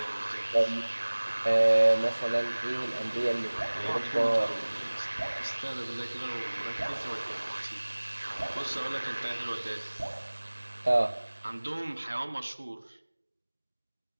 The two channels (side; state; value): both; inverted; correlation -1.00